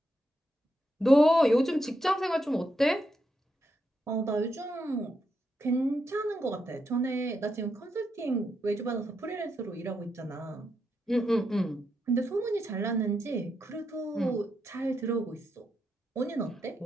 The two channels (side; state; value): both; normal; correlation 0.83